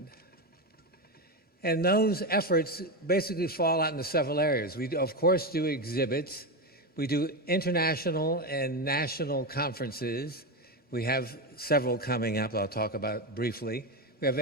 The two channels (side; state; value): left; late; 3.1 ms